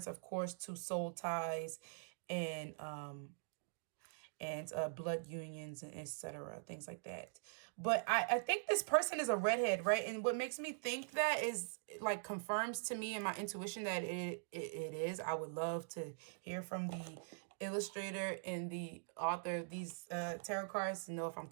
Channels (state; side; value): silent; left; digital silence